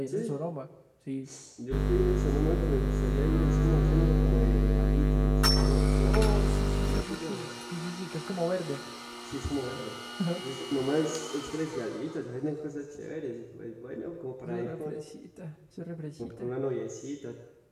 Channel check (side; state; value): both; identical; correlation 1.00